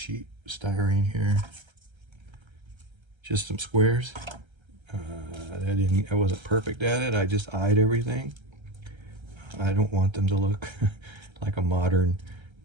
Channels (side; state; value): left; late; 1.3 ms